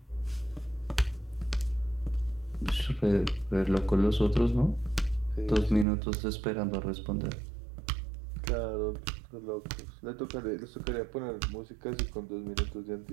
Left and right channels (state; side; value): drops out; left; at 5.9 s